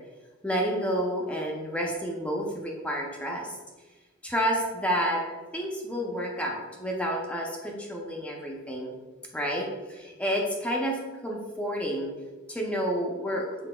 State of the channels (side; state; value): both; normal; correlation 0.34